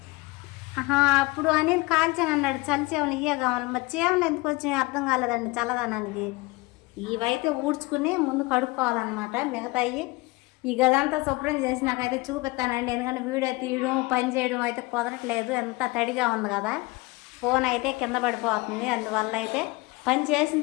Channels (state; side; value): quieter; right; 23.7 dB